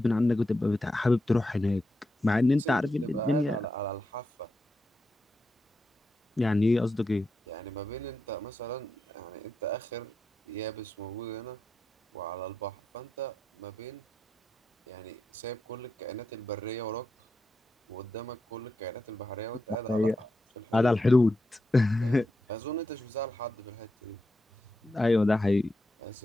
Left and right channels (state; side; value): normal; both; correlation 0.87